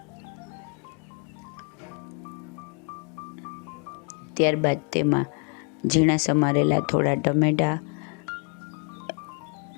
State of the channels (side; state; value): right; quieter; 38.1 dB